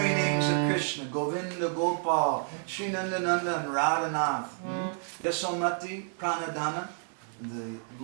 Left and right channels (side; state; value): left; silent; 58 dB below the other